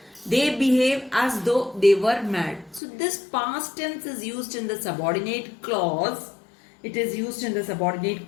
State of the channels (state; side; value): drops out; right; at 2.8 s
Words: They behave as though they were mad. So this past tense is used in the subordinate clause. It is used in the subordinate